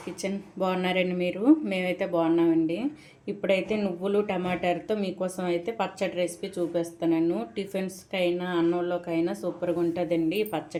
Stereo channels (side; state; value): both; identical; correlation 1.00